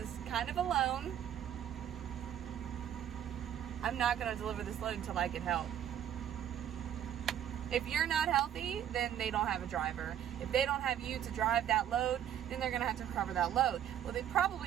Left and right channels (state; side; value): quieter; left; 10.2 dB